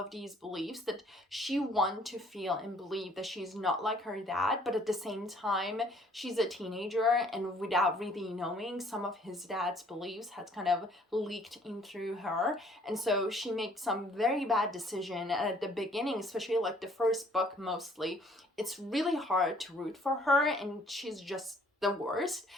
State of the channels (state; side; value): normal; both; correlation 0.60